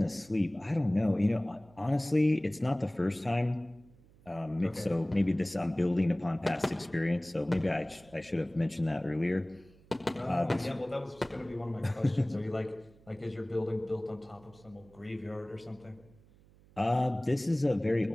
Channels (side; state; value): right; noise; hum, 27 dB below the sound